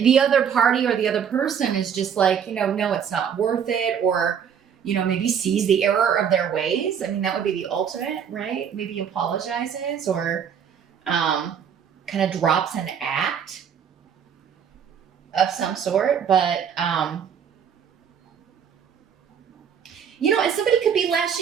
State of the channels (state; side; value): quieter; left; 7.8 dB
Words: other party or the other person is just like, no, it's not worth it, or, maybe sees the error of their ways. I mean, that would be the ultimate, right? Maybe apologizes or, kind of drops an act of some sort, but and somebody could be